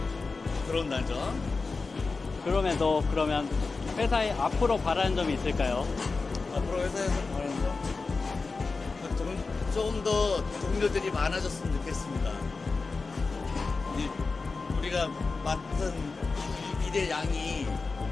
들어온다죠. 그러면 회사에 앞으로 바라는 점이 있을까요? 앞으로 회사에서 바라는 점 조금 더 동료들이 많아졌으면 좋겠습니다. 우리가 맡은 일의 양이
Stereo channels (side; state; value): right; quieter; 4.1 dB